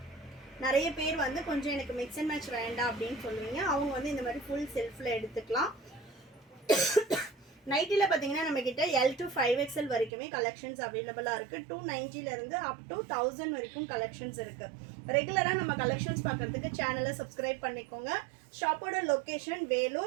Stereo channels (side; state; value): left; drops out; at 10.1 s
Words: நிறைய பேர் வந்து கொஞ்சம் எனக்கு மிக்ஸ் அண்ட் மேட்ச் வேண்டாம் அப்படின்னு சொல்லுவீங்க. அவங்க வந்து இந்த மாதிரி ஃபுல் செல்ஃபில் எடுத்துக்கலாம். நைட்டியில் பார்த்தீங்கன்னா நம்மக்கிட்ட L to 5XL வரைக்குமே கலெக்ஷன்ஸ் அவைலபிளாக இருக்குது. 290 அப் டு 1000 வரைக்கும் கலெக்ஷன்ஸ் இருக்குது. ரெகுலராக நம்ம கலெக்ஷன்ஸ் பார்க்குறதுக்கு சேனலை சப்ஸ்கிரைப் பண்ணிக்கோங்க. ஷாப்போட லொக்கேஷன்